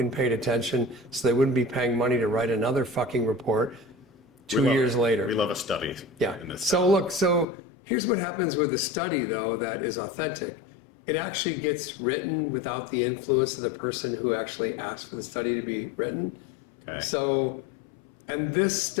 paid attention so they wouldn't be paying money to write another fucking report 2 years later. We love a study. Yeah. So here's what happens with a study, though, that is authentic. It actually gets written without the influence of the person who actually asked for the study to be written. Okay. So, and this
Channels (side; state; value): right; drops out; at 7.5 s